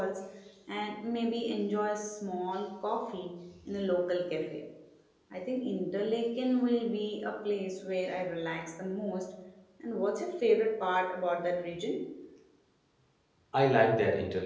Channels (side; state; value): both; identical; correlation 1.00